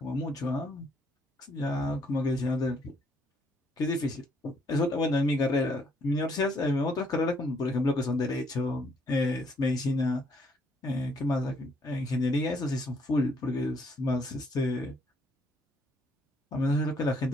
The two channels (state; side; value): normal; both; correlation 0.69